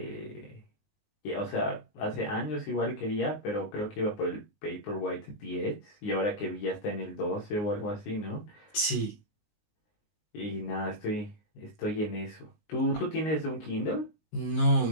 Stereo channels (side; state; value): right; late; 19 ms